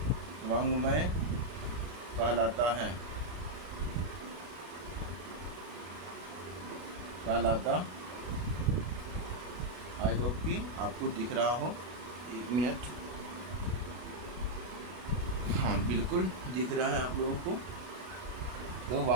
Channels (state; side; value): late; left; 33 ms